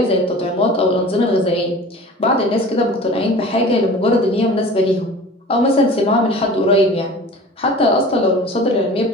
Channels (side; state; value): both; normal; correlation 0.41